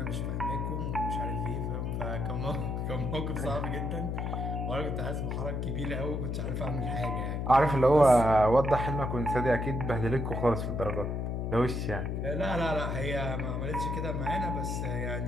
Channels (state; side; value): noise; left; hum, 1 dB below the sound